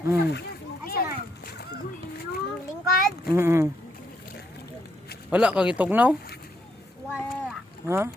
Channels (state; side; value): normal; both; correlation 0.75